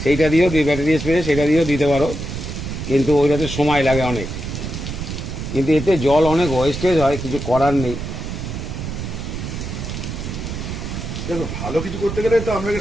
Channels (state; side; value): noise; right; rumble, 6 dB below the sound